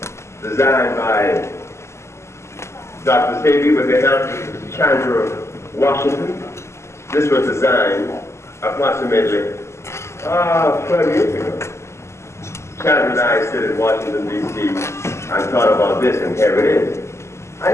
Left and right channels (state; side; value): late; right; 0.13 ms